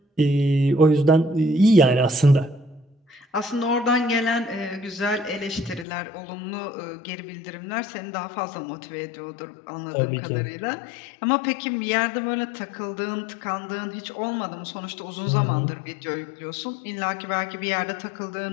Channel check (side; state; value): right; drops out; at 5.9 s